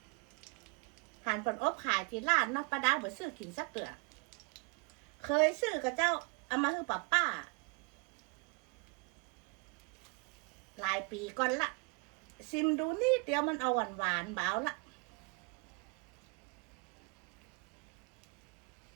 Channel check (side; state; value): left; quieter; 32.8 dB